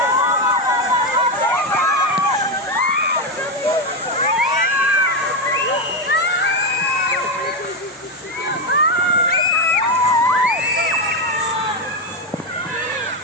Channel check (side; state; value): both; normal; correlation 0.09